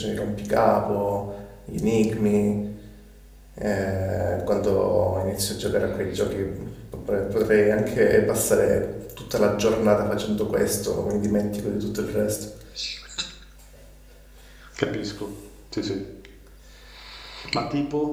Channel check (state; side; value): identical; both; correlation 1.00